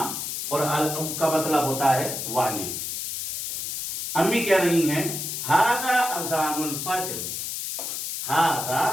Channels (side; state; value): left; noise; hiss, 4 dB below the sound